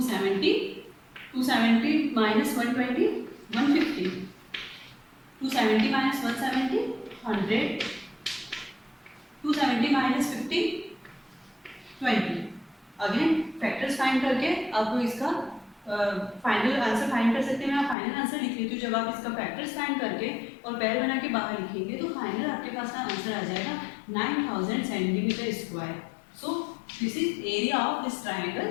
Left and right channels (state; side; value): drops out; right; at 17.9 s